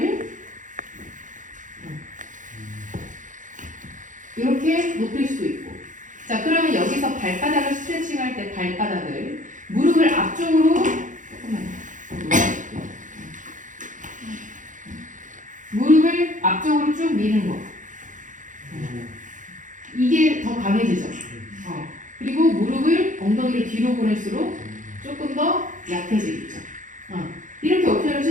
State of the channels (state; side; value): late; left; 0.37 ms